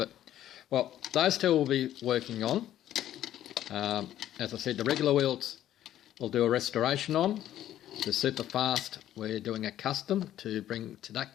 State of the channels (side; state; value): right; quieter; 12.2 dB